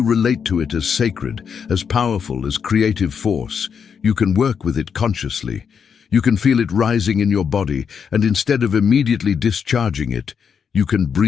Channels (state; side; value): quieter; right; 6.8 dB